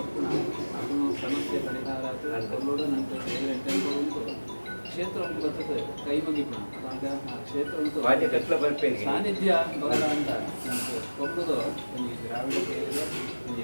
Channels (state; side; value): inverted; both; correlation -1.00